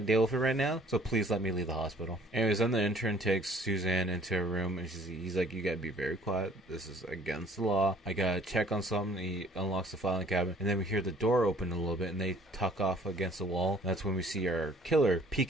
deal with it right now, so please let me leave the hospital. Anyways, then the intern takes Suzanne into a room, and he's like, you gotta be very quiet. This is against the law. I gotta check on something. He unlocks the filing cabinet, and then we hear the door open a little bit, and they tuck off against the wall. That's when we see our killer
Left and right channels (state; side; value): normal; both; correlation 0.57